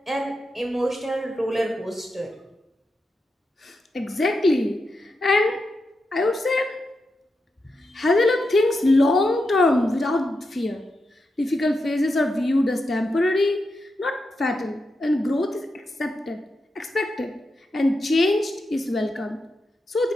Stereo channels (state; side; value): normal; both; correlation 0.87